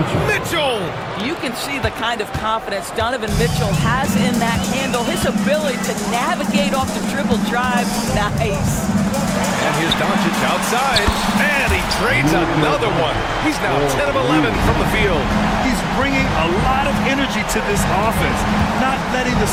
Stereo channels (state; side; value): identical; both; correlation 1.00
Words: Mitchell. You can see the kind of confidence Donovan Mitchell has in that handle. His ability to navigate off the dribble drive. Nice. And here's Doncic outside. And he trades another one. He's now 10 of 11 from the field. He's bringing a lot of energy to this offense, not letting the